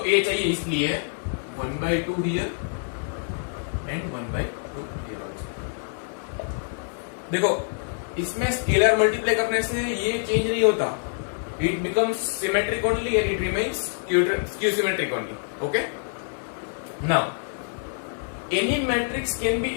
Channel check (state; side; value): silent; right; 61 dB below the other